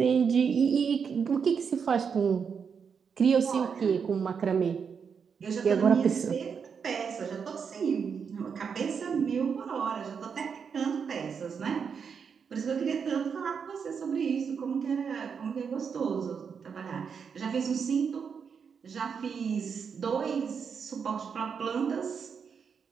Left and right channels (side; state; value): left; quieter; 6.4 dB